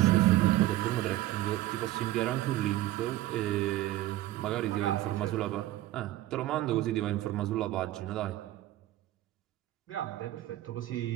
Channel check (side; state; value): left; quieter; 15.2 dB